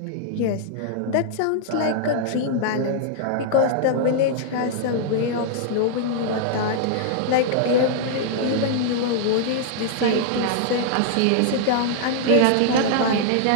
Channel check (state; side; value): different; both; correlation -0.01